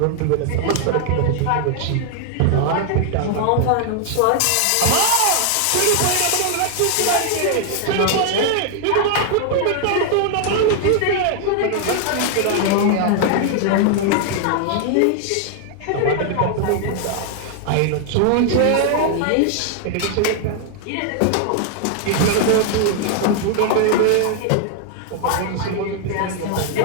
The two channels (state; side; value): different; both; correlation 0.00